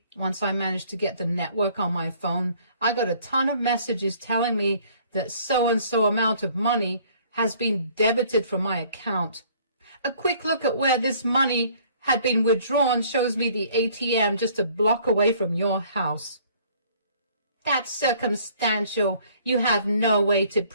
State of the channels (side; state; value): both; inverted; correlation -0.57